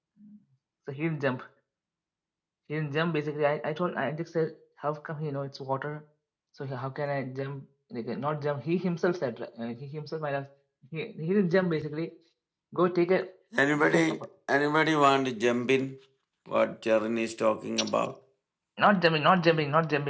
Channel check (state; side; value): identical; both; correlation 1.00